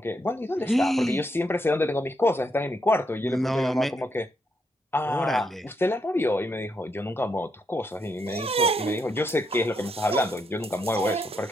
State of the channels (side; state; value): both; normal; correlation 0.79